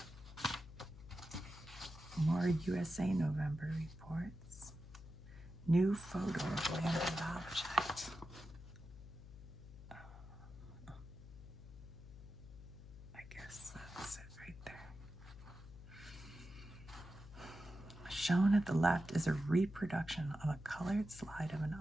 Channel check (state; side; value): noise; left; hum, 15 dB below the sound